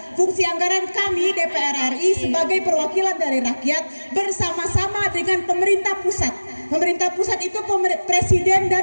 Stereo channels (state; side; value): inverted; both; correlation -1.00